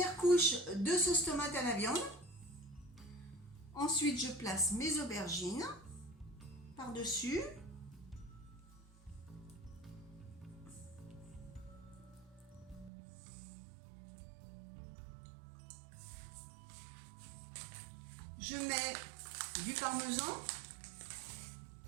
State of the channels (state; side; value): drops out; left; at 12.9 s